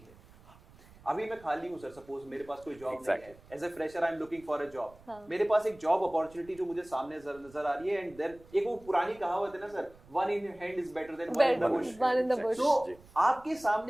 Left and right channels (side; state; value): right; noise; rumble, 24 dB below the sound